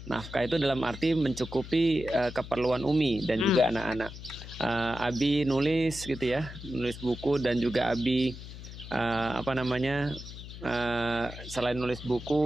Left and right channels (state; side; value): noise; left; hum, 12 dB below the sound